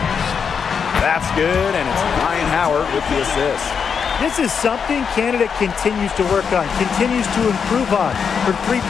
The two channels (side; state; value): right; quieter; 6.5 dB